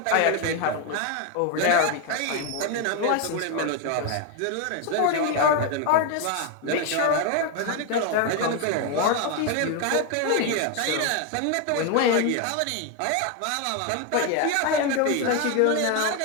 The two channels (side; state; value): both; different; correlation 0.01